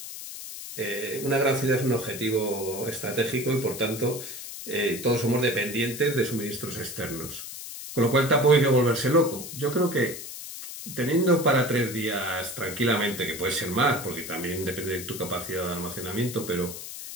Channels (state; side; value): noise; left; hiss, 10 dB below the sound